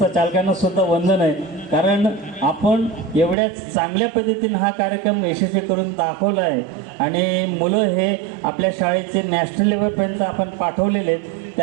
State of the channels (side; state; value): left; drops out; at 3.4 s